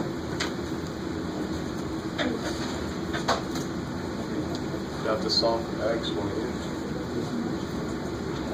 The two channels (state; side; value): identical; both; correlation 1.00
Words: Got to solve for x when